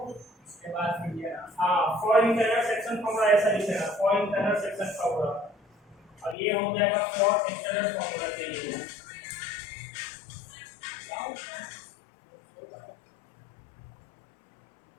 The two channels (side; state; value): right; drops out; at 6.4 s